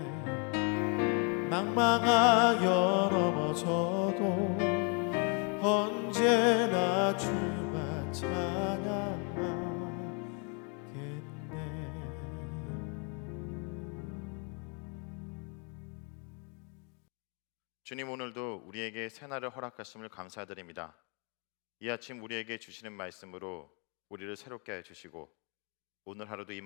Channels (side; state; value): right; quieter; 36.7 dB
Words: 낭망하여 넘어져도 언제나 주만 찬양하겠네. 주님, 오늘도 우리에게 새날을 허락하심을 감사드립니다. 이 아침 우리에게 주시는 말씀으로 우리를 새롭게 해주시고 오늘 하루도 이